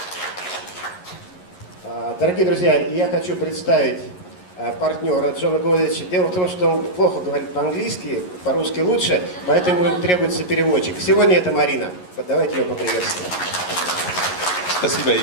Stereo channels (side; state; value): right; late; 11 ms